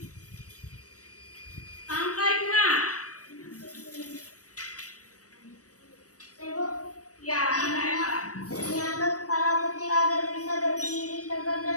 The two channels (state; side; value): late; right; 0.66 ms